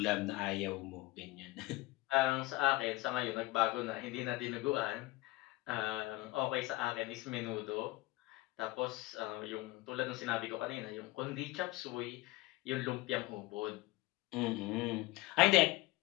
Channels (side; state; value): right; quieter; 20.1 dB